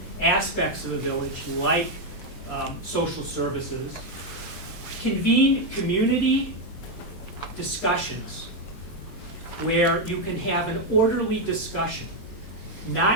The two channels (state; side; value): late; right; 23 ms